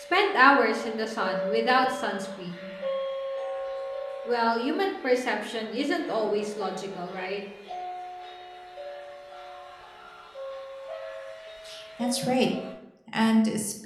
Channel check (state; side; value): identical; both; correlation 1.00